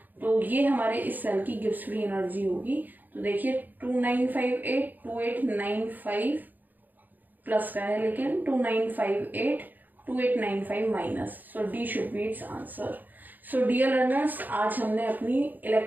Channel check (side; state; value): left; late; 0.086 ms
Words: तो ये हमारे इस सेल की गिब्स फ्री एनर्जी होगी। तो देखिए 2958 प्लस का है, लेकिन 2958 minus. So D should be its answer. So dear learners, आज हमने अपनी